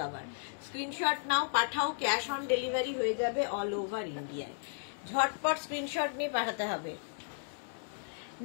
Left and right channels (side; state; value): right; silent; 55 dB below the other